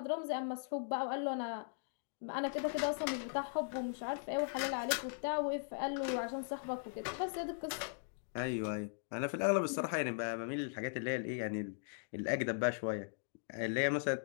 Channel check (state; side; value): silent; right; digital silence